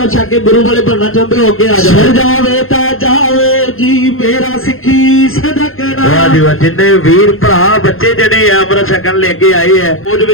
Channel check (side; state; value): right; late; 0.60 ms